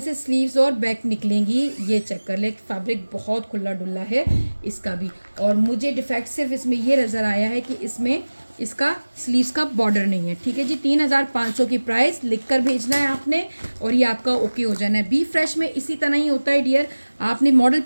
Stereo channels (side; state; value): both; inverted; correlation -1.00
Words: स्लीव्स और बैक निकलेंगी। ये चेक कर ले, फैब्रिक बहुत खुला डुल्ला है इसका भी। और मुझे डिफेक्ट सिर्फ इसमें ये नज़र आया है कि इसमें इसका स्लीव्स का बॉर्डर नहीं है, ठीक है जी। 3500 की प्राइस लिख कर भेजना है आपने, और ये आपका ओके हो जाना है। बी फ्रेश में इसी तरह ही होता है डियर, आपने मॉडल